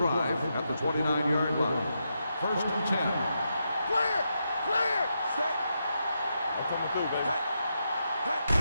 at the 29-yard line. First and 10. Clear! Clear! Set! I'm coming through, baby.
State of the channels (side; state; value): both; inverted; correlation -0.84